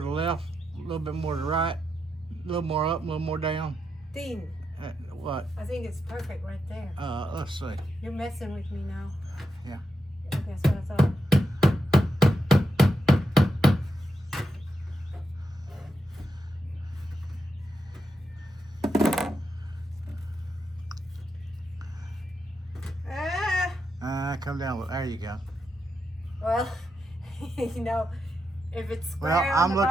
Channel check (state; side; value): normal; both; correlation 0.85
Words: the left, a little bit more to the right, a little more up, a little more down. Dean, What? I think it's perfect right there. Let's see. You're messing with me now. Yeah. That's what I thought. Come down. There you go. Well, you know, if it's square Well, on the